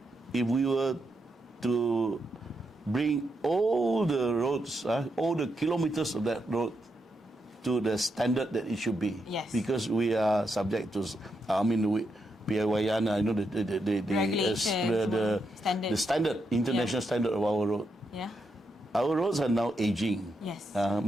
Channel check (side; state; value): both; normal; correlation 0.82